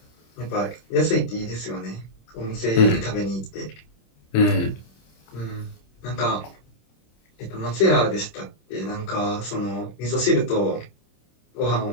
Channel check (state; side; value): late; right; 26 ms